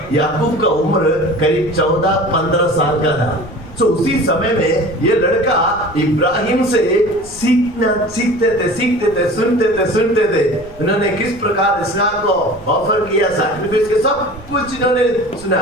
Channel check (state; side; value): noise; right; rumble, 21 dB below the sound